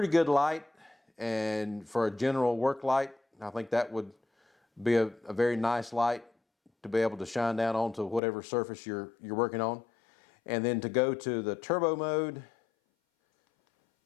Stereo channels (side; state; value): right; drops out; at 8.2 s